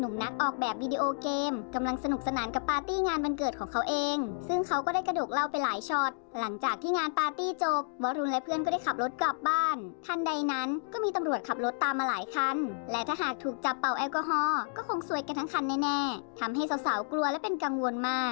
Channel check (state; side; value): silent; right; digital silence